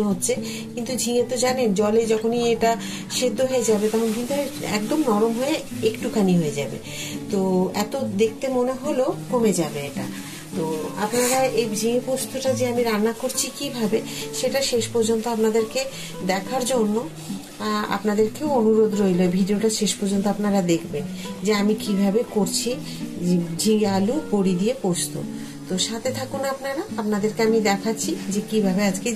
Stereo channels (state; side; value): identical; both; correlation 1.00